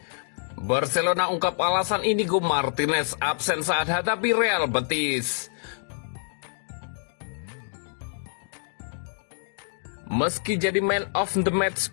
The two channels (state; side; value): silent; right; digital silence